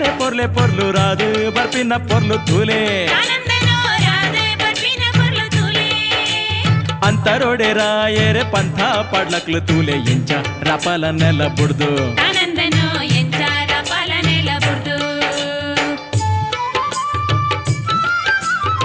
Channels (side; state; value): both; identical; correlation 1.00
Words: ಪೊರ್ಲೆ ಪೊರ್ಲು ರಾದು ಬರ್ಪಿನ ಪೊರ್ಲು ತೂಲೆ ಆನಂದನೋ ರಾಧೆ ಬರ್ಪಿನ ಪೊರ್ಲು ತೂಲೆ ಅಂತರೋಡೆ ರಾಯರೆ ಪಂಥ ಪಾಡ್ಲಕ್ಲು ತೂಲೆ ಎಂಚ ರಪಲ ನೆಲ ಬುಡ್ದು ಆನಂದನೋ ಎಂಚಾರ ಪಾಲನೆಲ ಬುಡ್ದು